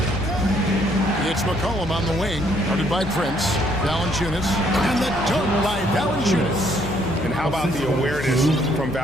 It's McCollum on the wing. Guarded by Prince. Valanciunas. And the dunk by Valanciunas. And how about the awareness from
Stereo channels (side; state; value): left; noise; hum, 11 dB below the sound